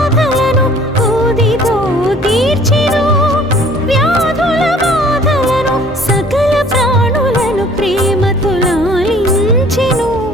ఊదితో తీర్చెను వ్యాధుల బాధలను. సకల ప్రాణులను ప్రేమతో లాలించెను,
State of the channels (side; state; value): both; normal; correlation 0.54